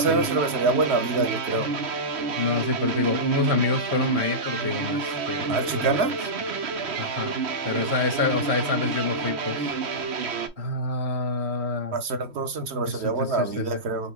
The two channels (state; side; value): late; left; 3.1 ms